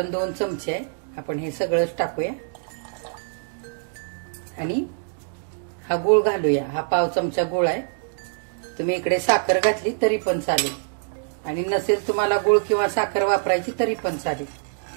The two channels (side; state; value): left; silent; digital silence